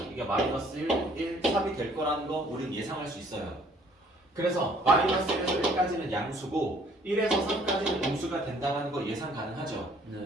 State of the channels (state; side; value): normal; both; correlation 0.59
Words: 이게 마이너스 1, 3이 될 거라는 거 우린 예상할 수 있어요. 그래서 마이너스 1에서 1까지는 양수고 1에서 3까지는 음수가 된다는 거 예상 가능하죠. 네.